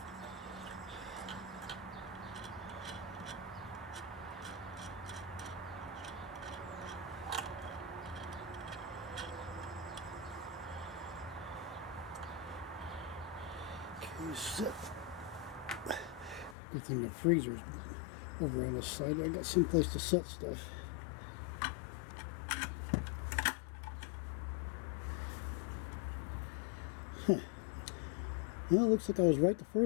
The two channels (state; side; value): drops out; right; at 16.6 s